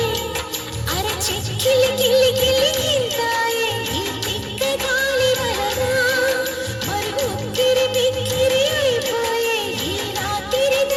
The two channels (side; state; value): both; identical; correlation 1.00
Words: అరే చిక్కిలి గిల్లి గిల్లి గింతాయి ఈ తిక్క గాలి వలన మరి ఉక్కిరి బిక్కిరి అయిపోయే ఈ రాత్రి